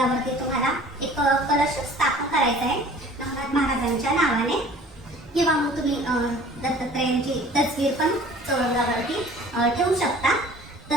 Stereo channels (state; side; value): normal; both; correlation 0.48